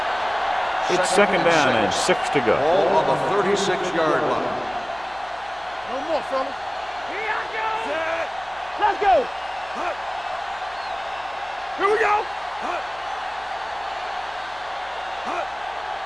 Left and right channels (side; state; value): left; noise; hum, 26 dB below the sound